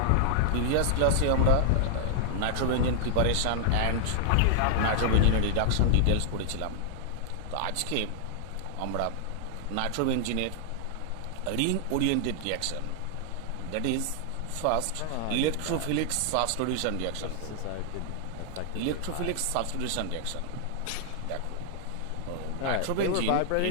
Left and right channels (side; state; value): both; different; correlation 0.00